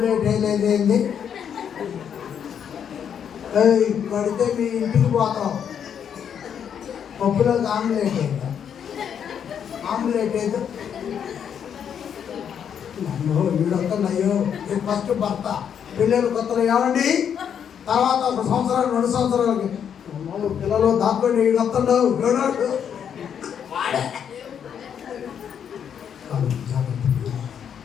వేయలేదేంది పడితే మీ ఇంటికి పోతాం. పప్పులో ఒక ఆమ్లెట్ వేయదా, ఆమ్లెట్ వేయదు నన్ను వీడొక్కడయ్యో. ఫస్ట్ భర్త పిల్లలు కొత్తలో ఏమండి, తర్వాత ఒక సంవత్సరాలు 2 సంవత్సరాలకి పిల్లలు దాంట్లో వీడొస్తాడు వీడాడు.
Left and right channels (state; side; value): quieter; right; 8.2 dB